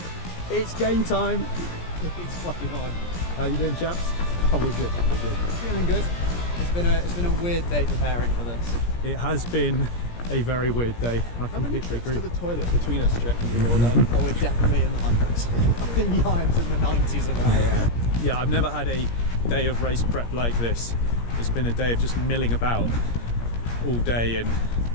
It's game time. It's fucking on. How you doing, chaps? Oh, we're good. Feeling good. It's been a weird day preparing for this. It has been a very weird day. I How many completely trips agree. to the toilet between us do you reckon you've all done? Oh, we're definitely in the hundreds. I think Ieuan's in the 90s of that. Yeah, I've never had a day of race prep like this. It's been a day of just milling about all day, and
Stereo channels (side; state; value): right; late; 17 ms